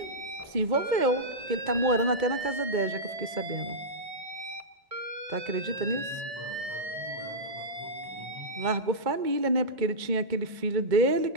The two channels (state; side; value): late; left; 2.1 ms